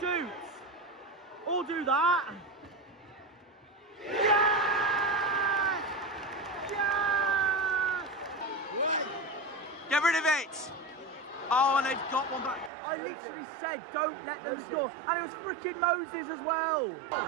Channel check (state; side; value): drops out; left; at 12.7 s